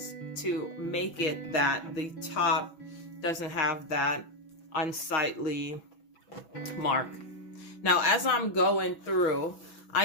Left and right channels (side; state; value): right; late; 6.0 ms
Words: to make it that the top doesn't have that unsightly mark. Now, as I'm going through,